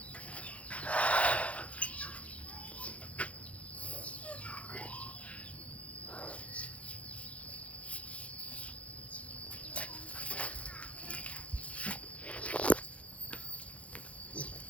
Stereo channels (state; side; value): late; right; 0.064 ms